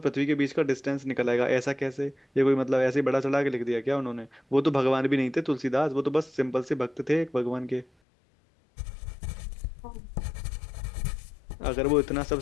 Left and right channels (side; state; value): right; drops out; at 7.9 s